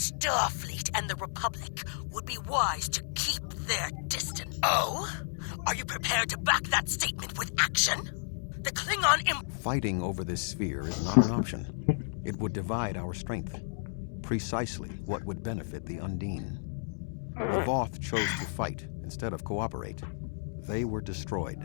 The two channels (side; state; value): right; silent; digital silence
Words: and the Republic would be wise to keep their distance. Oh? Are you prepared to back that statement with action? The Klingon Fighting over this sphere is not an option. It would divide our strength. Precisely what would benefit the Undine. The Voth chose to fight instead of cooperate. They were destroyed.